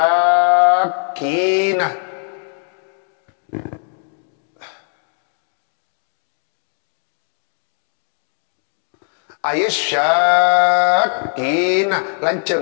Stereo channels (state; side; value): silent; right; 59 dB below the other